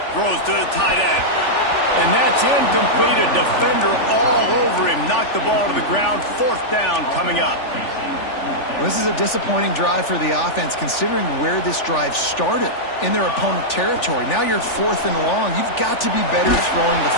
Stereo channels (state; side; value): late; right; 3.4 ms